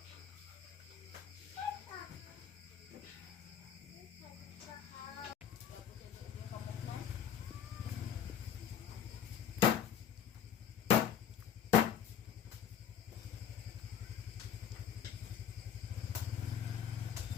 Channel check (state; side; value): quieter; right; 9.0 dB